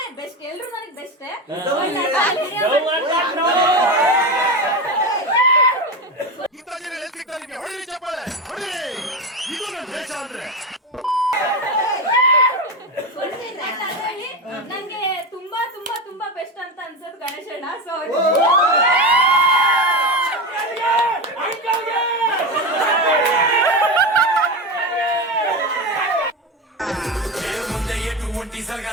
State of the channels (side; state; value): both; normal; correlation 0.18